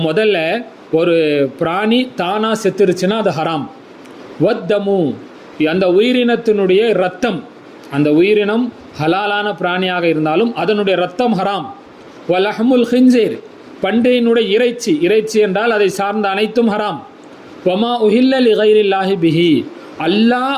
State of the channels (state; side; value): identical; both; correlation 1.00